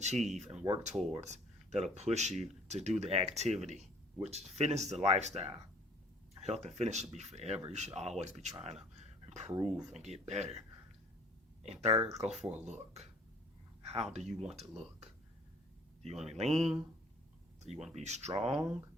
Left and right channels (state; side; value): normal; both; correlation 0.54